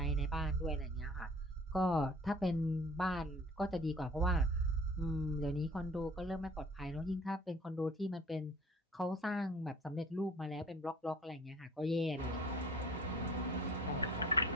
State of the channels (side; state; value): both; normal; correlation 0.49